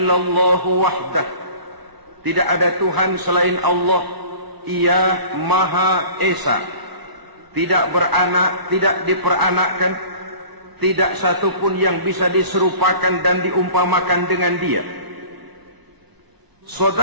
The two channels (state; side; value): late; left; 1.0 ms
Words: wahdah, tidak ada Tuhan selain Allah, Ia Maha Esa. Tidak beranak, tidak diperanakkan, tidak satupun yang bisa diserupakan dan diumpamakan dengan Dia.